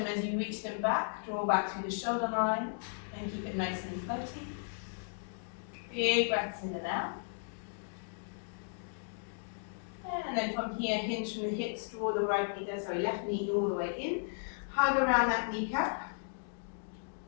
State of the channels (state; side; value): silent; right; digital silence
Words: as you reach them back. Draw back through the shoulder line and keep it nice and floaty. Big breaths in and out. And then from here, hinge from the hips, draw the left knee all the way in. Hug around that kneecap.